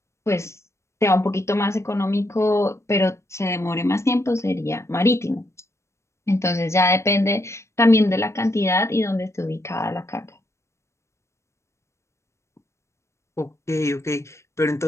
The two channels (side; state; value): right; late; 0.13 ms